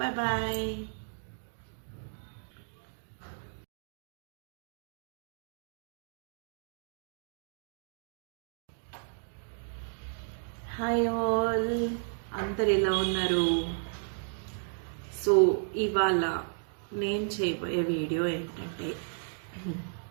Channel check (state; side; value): silent; left; digital silence